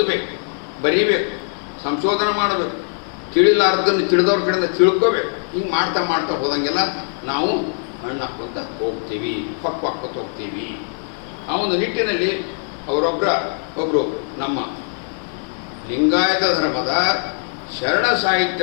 ಬರೀಬೇಕು, ಸಂಶೋಧನೆ ಮಾಡಬೇಕು, ತಿಳಿಲಾರ್ದನ್ನು ತಿಳಿದವ್ರ ಕಡೆಯಿಂದ ತಿಳ್ಕೋಬೇಕು. ಹಿಂಗೆ ಮಾಡ್ತಾ ಮಾಡ್ತಾ ಹೋದಂಗೆಲ್ಲ ನಾವು ಹಣ್ಣು ಹಾಕ್ಕೊಂತ ಹೋಗ್ತೀವಿ, ಪಕ್ವಾಕ್ಕೊತ ಹೋಗ್ತೀವಿ. ಆ ಒಂದು ನಿಟ್ಟಿನಲ್ಲಿ ಒಬ್ಬರು ನಮ್ಮ ಲಿಂಗಾಯತ ಧರ್ಮದ ಶರಣ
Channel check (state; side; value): silent; right; 56 dB below the other